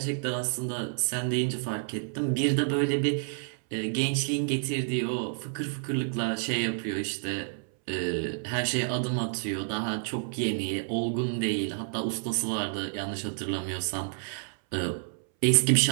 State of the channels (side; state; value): left; silent; 58 dB below the other